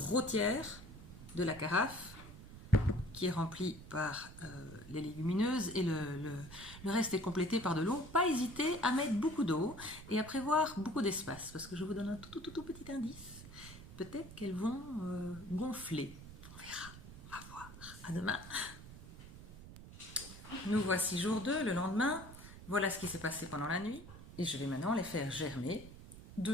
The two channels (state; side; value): noise; right; rumble, 15 dB below the sound